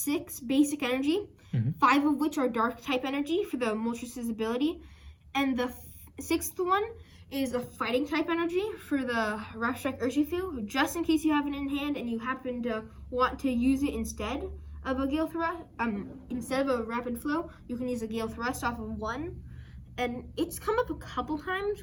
basic energy, 5 of which are dark type energy for the Moltres' ability, and the 6th one is a fighting type energy for the Rapstrike Urshifu, just in case you have it in hand and you happen to want to use it instead of a Gale Thrust. Instead of a Rapid Flow, you can use a Gale Thrust off of 1. And it's come up a couple times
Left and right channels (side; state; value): both; identical; correlation 1.00